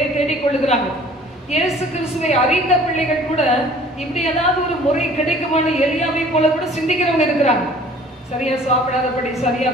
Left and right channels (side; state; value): both; normal; correlation 0.51